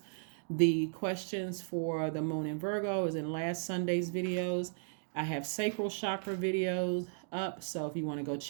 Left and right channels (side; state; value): left; silent; digital silence